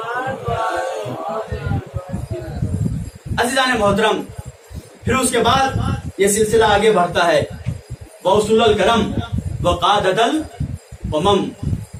عزیزان محترم، پھر اس کے بعد یہ سلسلہ آگے بڑھتا ہے. وَأُصُولُ الْكَرَمِ وَقَادَةَ الْأُمَمِ.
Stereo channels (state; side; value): identical; both; correlation 1.00